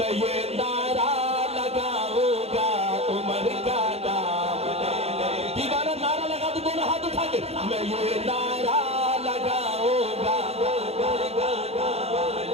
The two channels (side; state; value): left; late; 0.30 ms